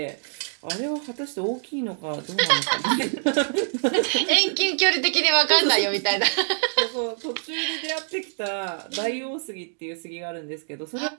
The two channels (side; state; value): left; silent; 62 dB below the other